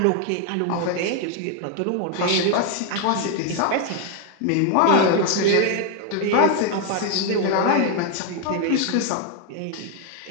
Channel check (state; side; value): different; both; correlation 0.00